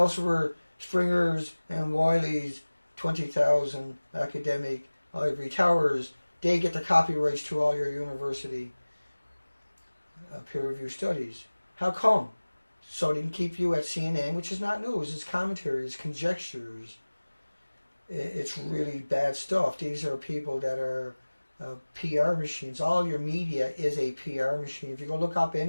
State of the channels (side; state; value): both; inverted; correlation -1.00